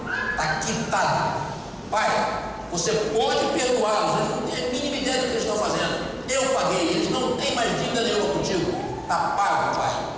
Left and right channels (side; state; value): both; identical; correlation 1.00